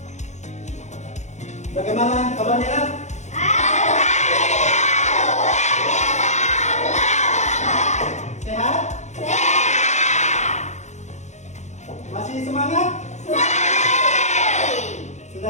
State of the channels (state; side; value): late; right; 0.34 ms